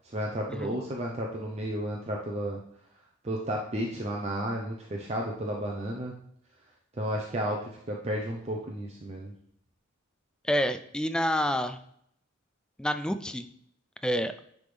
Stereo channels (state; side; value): normal; both; correlation 0.63